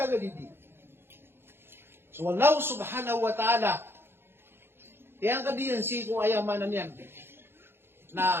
hindi. So, Allah subhanahu wa ta'ala, tiyang kadiyan si ko ayamanan yan,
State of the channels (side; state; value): left; late; 0.11 ms